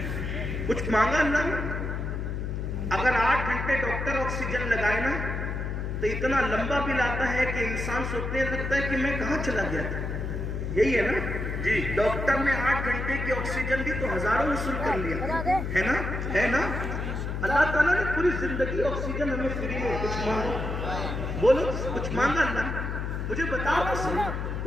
کچھ مانگا اللہ نے؟ اگر 8 گھنٹے ڈاکٹر آکسیجن لگائے نا تو اتنا لمبا بل آتا ہے کہ انسان سوچنے لگتا ہے کہ میں کہاں چلا گیا تھا۔ یہی ہے نا جی، ڈاکٹر نے 8 گھنٹے کی آکسیجن دی تو ہزاروں وصول کر لیا، ہے نا؟ اللہ تعالیٰ نے پوری زندگی آکسیجن ہمیں فری میں، کچھ مانگو، بولو کچھ مانگا اللہ نے؟ مجھے بتاؤ تو صحیح،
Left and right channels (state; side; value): noise; left; hum, 3 dB below the sound